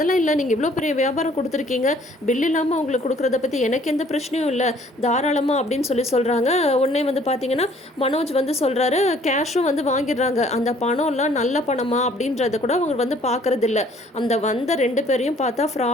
இல்லை, நீங்கள் இவ்வளோ பெரிய வியாபாரம் கொடுத்துருக்கீங்க, பில் இல்லாமல் உங்களுக்கு கொடுக்குறத பற்றி எனக்கு எந்த பிரச்சனையும் இல்லை, தாராளமாக அப்படின்னு சொல்கிறாங்க. உடனே வந்து பார்த்தீங்கன்னா மனோஜ் வந்து சொல்கிறாரு, கேஷும் வந்து வாங்கிடுறாங்க. அந்த பணம்லாம் நல்ல பணமா அப்படின்றத கூட அவங்க வந்து பார்க்கறது இல்லை. அந்த வந்த 2 பேரையும் பார்த்தா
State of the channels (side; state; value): both; normal; correlation 0.58